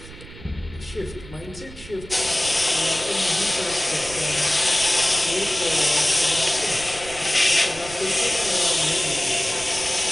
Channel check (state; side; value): noise; right; rumble, 16 dB below the sound